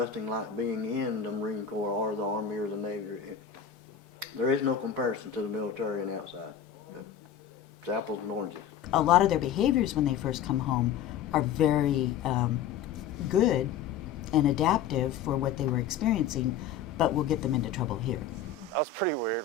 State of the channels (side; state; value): right; quieter; 8.1 dB